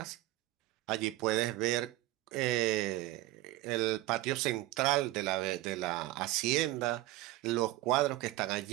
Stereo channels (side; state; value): left; quieter; 17.3 dB